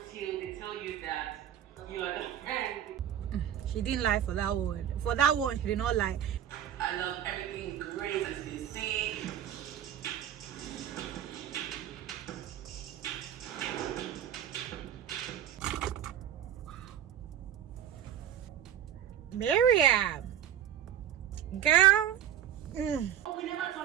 they tell you that you are the friend. She didn't lie for that one. For that one, she did not lie. I love everything great, as you can see. Mariam, girl. Oh, we never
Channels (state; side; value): quieter; left; 10.4 dB